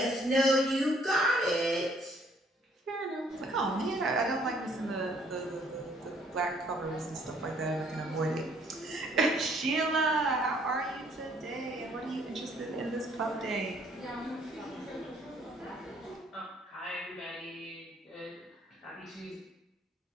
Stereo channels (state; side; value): normal; both; correlation 0.63